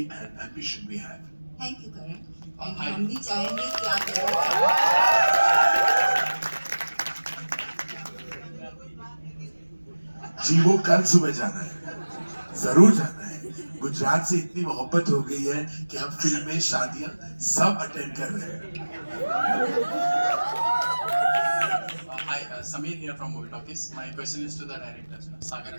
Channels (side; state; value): both; inverted; correlation -1.00